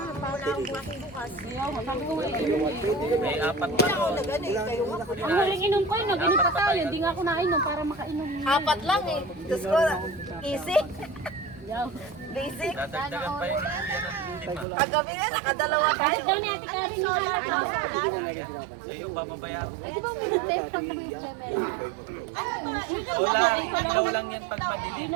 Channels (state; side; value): drops out; left; at 14.7 s